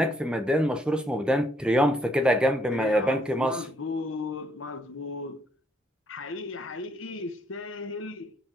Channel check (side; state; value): both; normal; correlation 0.70